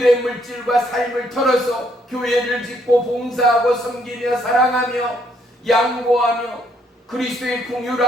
물질과 삶을 털어서 교회를 짓고 봉사하고 섬기며 사랑하며 양보하며 그리스도의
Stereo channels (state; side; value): normal; both; correlation 0.70